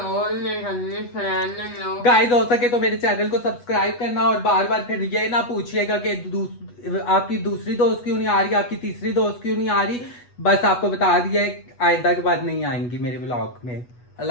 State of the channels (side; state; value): right; late; 8.2 ms